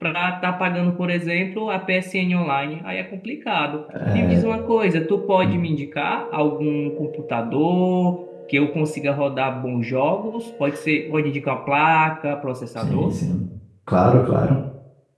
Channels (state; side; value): identical; both; correlation 1.00